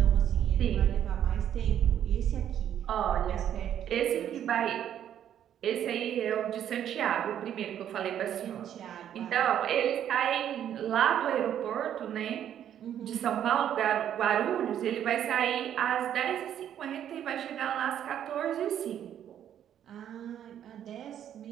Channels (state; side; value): quieter; left; 10.1 dB